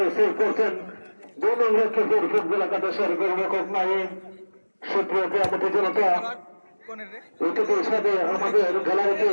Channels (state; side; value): inverted; both; correlation -1.00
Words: সেভ করছেন 2 নং লক্ষ্মীপুর ফুটবল একাদশের গোলরক্ষক নাইম। সুপ্রিয় ক্রীড়াপতি জনতা, অতিথির সাথে আমাদের গ্যালারিতে